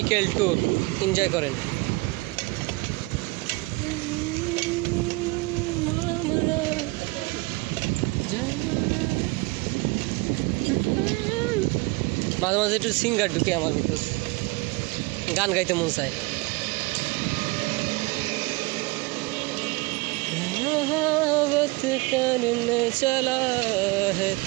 tour, enjoy করেন। মাঝে মাঝে একটু সিঙ্গার ঢুকে আমার ভিতর, গান গাইতে মন চায়। मोहब्बत करने चला है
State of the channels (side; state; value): left; quieter; 24.3 dB